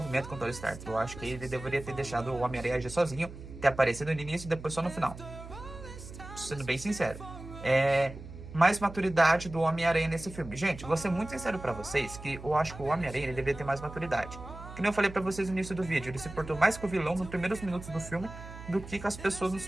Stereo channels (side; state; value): right; noise; hum, 13 dB below the sound